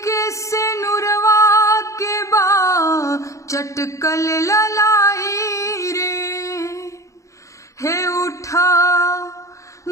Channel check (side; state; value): right; late; 0.15 ms